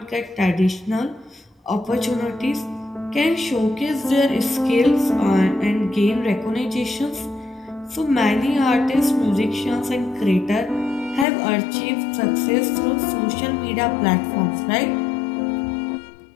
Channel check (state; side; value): drops out; right; at 11.2 s